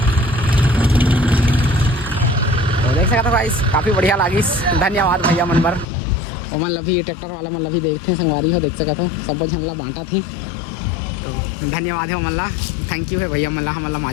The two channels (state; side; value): drops out; right; at 5.9 s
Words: तो देख सकते हो गाइस काफ़ी बढ़िया लागिस धन्यवाद भैया मन बर वो मन अभी ट्रैक्टर वाला मन अभी देखते हैं संगवारी हो देख सकते हो सब झनला बांटा थी तो धन्यवाद है मल्ला थैंक यू है भैया मल्ला हमला